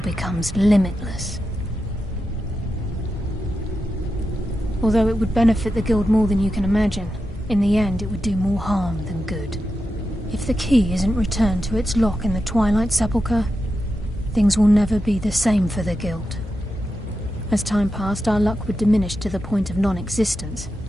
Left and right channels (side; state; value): both; normal; correlation 0.89